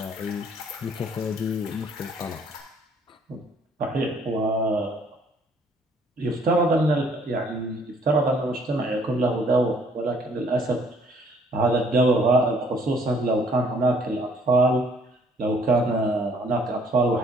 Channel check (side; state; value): both; normal; correlation 0.61